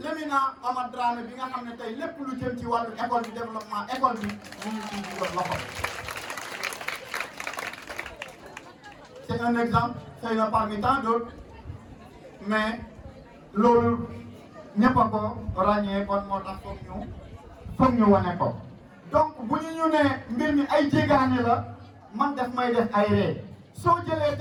Amath Dramé bi nga xam ne tey lépp lu jëm ci wàllu école bi développement école bi mu ngi ciy dugal loxo. C'est un exemple xëy na parmi tant d'autres mais loolu ñëpp a ko ràññee kon moo tax foog ñu wane ko. donc bu ñu ne mbir mi ay jéegaane la man def may def ay ree soo jëlee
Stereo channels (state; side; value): identical; both; correlation 1.00